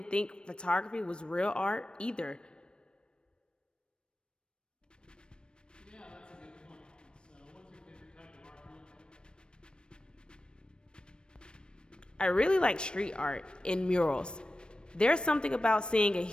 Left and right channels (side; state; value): right; late; 0.054 ms